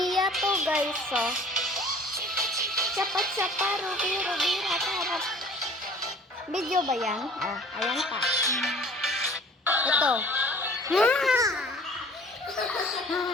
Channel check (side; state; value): both; normal; correlation 0.49